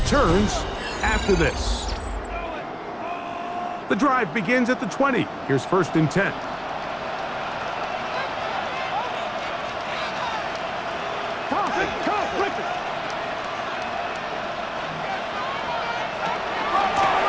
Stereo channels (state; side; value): identical; both; correlation 1.00